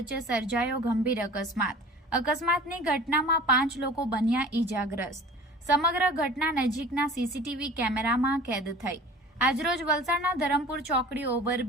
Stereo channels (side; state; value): both; normal; correlation 0.43